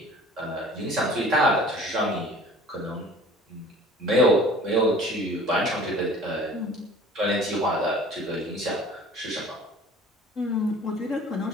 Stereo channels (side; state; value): both; normal; correlation 0.47